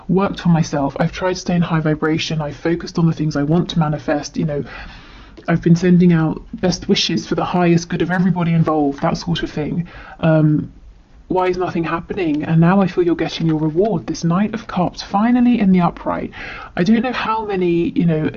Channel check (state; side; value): identical; both; correlation 1.00